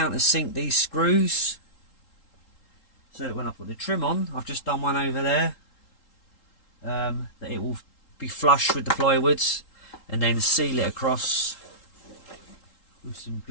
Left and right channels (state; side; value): late; right; 3.8 ms